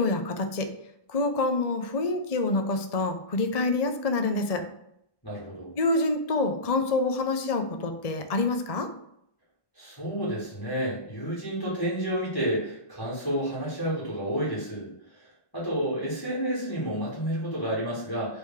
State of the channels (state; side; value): late; right; 1.1 ms